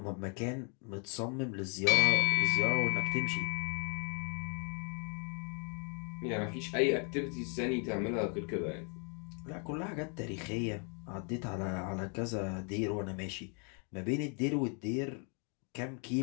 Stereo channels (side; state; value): right; quieter; 37.8 dB